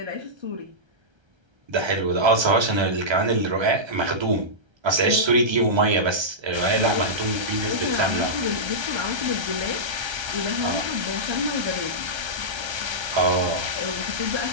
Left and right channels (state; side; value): late; left; 1.3 ms